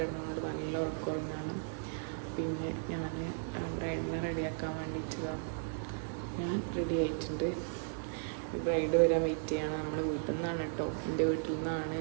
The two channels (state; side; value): silent; left; 54 dB below the other